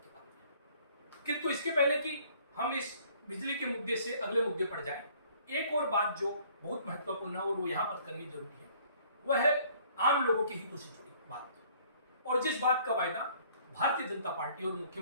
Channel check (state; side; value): inverted; both; correlation -0.58